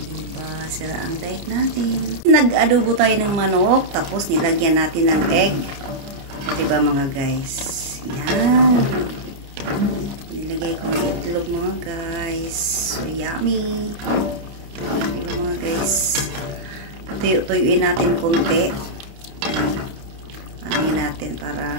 Diba? Sira ang diet natin. Nag-adobo tayo ng manok tapos nilagyan natin ng egg. Diba mga guys? Yan. Nilagay ko ng itlog mga guys. So yummy! Diba mga guys? Tuyuin natin konti. Ano natin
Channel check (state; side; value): late; left; 29 ms